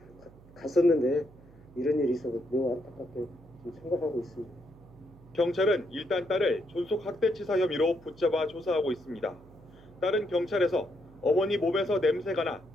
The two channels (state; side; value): noise; right; hum, 23 dB below the sound